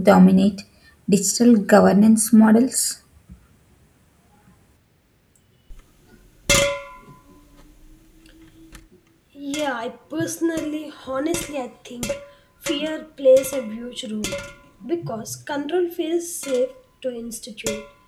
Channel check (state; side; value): identical; both; correlation 1.00